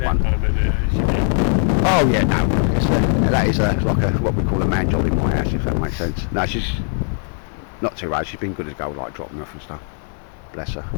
one. Oh yeah, no, that is like what we call a man job in my house, if that makes sense. No, she's not too bad, she's been good as gold, like dropping off and stuff. Bless her.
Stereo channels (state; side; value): silent; right; 60 dB below the other